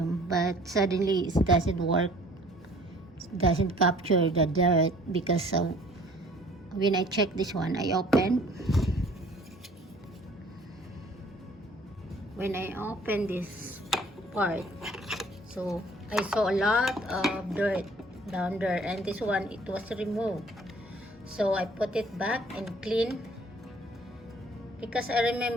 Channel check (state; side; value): normal; both; correlation 0.54